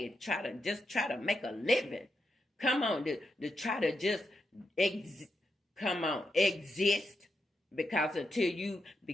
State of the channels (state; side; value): normal; both; correlation 0.84